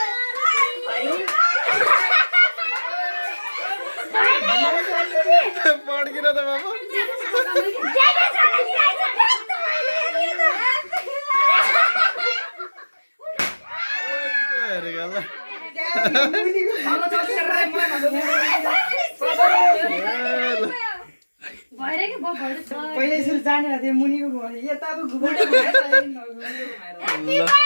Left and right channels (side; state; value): both; inverted; correlation -1.00